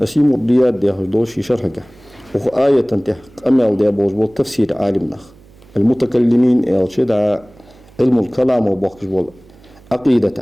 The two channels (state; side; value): noise; right; hum, 26 dB below the sound